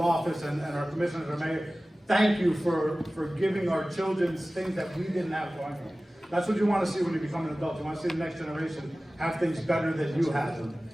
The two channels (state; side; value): normal; both; correlation 0.97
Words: office and our commissioners and mayor, thank you for giving our children things that we didn't have growing up. That's what you want to see when you become an adult. You want to see the next generation have things better than you had them.